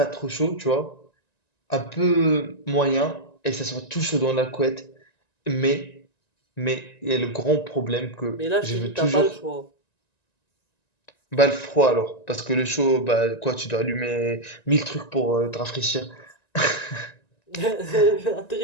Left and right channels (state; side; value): late; right; 1.9 ms